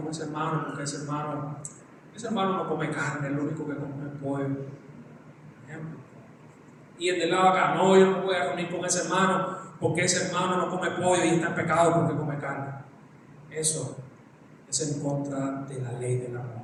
ese hermano porque ese hermano no come carne, es lo único que come pollo. Y el de lado acá, no, yo no me voy a reunir con ese hermano porque ese hermano no come pollo y está en pecado porque come carne. Eso es en contra de la ley del amor.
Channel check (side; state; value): both; identical; correlation 1.00